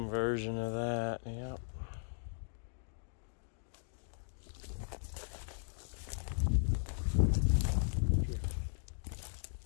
version of that, yep.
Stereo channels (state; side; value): silent; right; digital silence